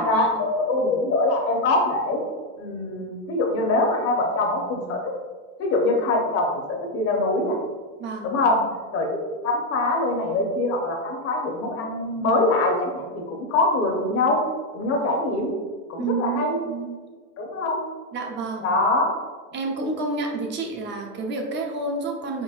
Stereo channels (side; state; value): both; normal; correlation 0.03